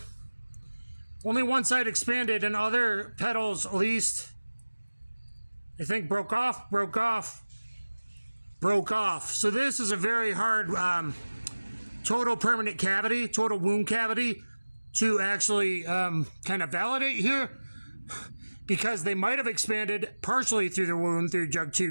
Only one side expanded and other petals at least, I think broke off. So this is a very hard total permanent cavity, total wound cavity to actually kind of validate here because they might have expanded partially through the wound through jug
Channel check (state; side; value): inverted; both; correlation -1.00